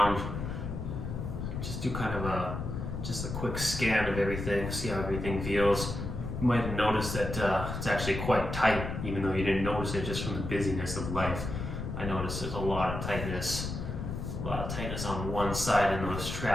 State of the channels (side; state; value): left; noise; rumble, 5 dB below the sound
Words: Just do kind of just a quick scan of everything, see how everything feels. You might have noticed that it's actually quite tight, even though you didn't notice it just from the busyness of life. I noticed there's a lot of tightness on one side in those